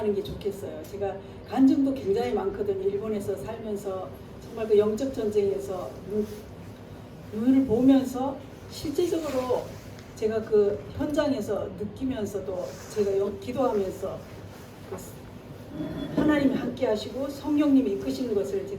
게 좋겠어요. 제가 간증도 굉장히 많거든요. 일본에서 살면서 정말 그 영적 전쟁에서 눈을 보면서 실제적으로 제가 그 현장에서 느끼면서도 제가 기도하면서 하나님이 함께 하시고 성령님이 이끄시는 것을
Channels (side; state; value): both; identical; correlation 1.00